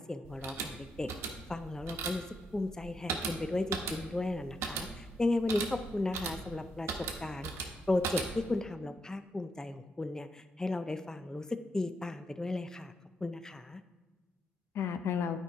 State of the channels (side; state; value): both; normal; correlation 0.80